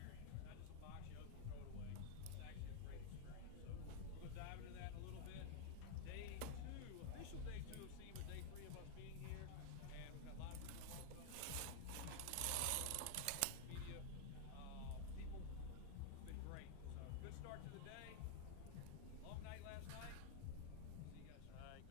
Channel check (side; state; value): both; different; correlation 0.00